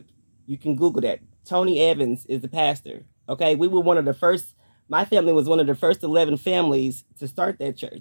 You can Google that. Tony Evans is the pastor. Okay, we were one of the first. My family was one of the first 11 families to start that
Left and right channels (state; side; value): inverted; both; correlation -1.00